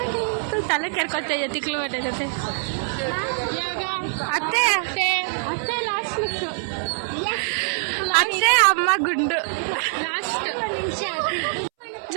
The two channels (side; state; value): left; silent; 63 dB below the other